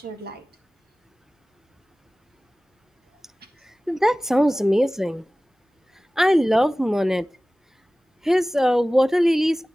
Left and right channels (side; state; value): both; normal; correlation 0.97